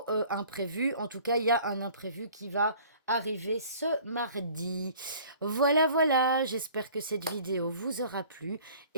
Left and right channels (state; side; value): inverted; both; correlation -0.50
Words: imprévu. En tout cas, il y a un imprévu qui va arriver ce mardi. Voilà, voilà, j'espère que cette vidéo vous aura plu